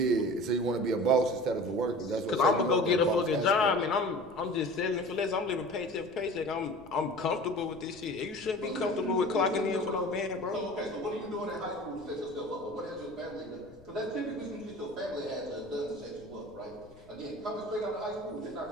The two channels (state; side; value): noise; left; rumble, 23 dB below the sound